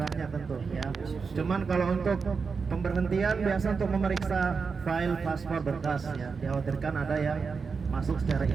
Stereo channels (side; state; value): left; quieter; 5.2 dB